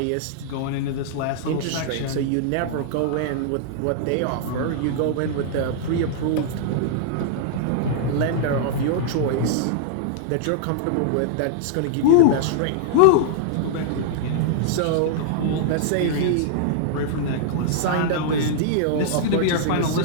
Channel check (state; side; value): different; both; correlation -0.01